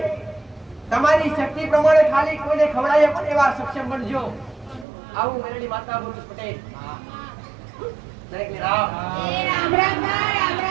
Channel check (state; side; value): drops out; left; at 4.9 s